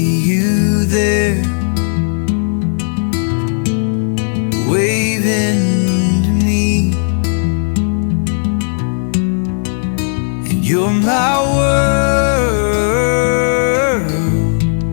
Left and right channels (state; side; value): silent; right; digital silence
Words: you there, waving to me, and you're my world.